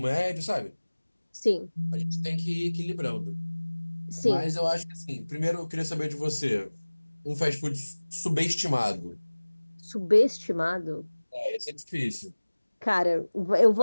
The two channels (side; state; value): both; inverted; correlation -1.00